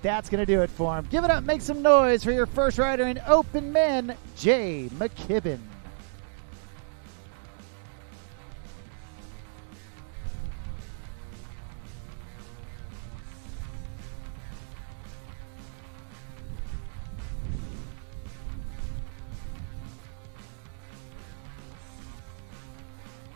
that's going to do it for him. Give it up, make some noise for your first rider in open men, Jay McKibben.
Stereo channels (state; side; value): silent; left; digital silence